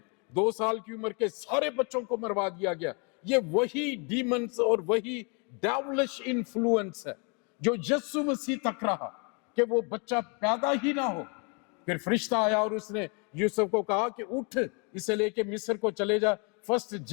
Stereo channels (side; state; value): right; quieter; 34.4 dB